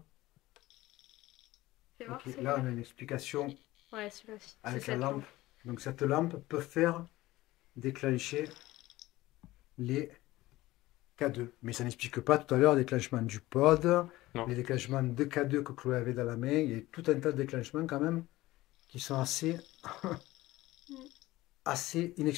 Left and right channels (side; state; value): right; quieter; 17.8 dB